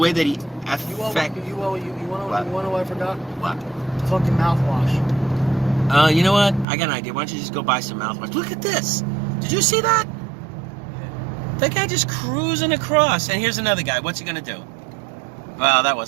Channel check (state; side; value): drops out; left; at 6.7 s